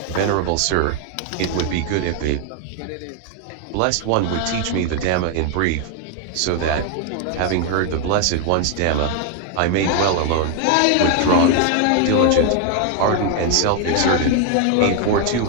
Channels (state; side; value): different; both; correlation 0.00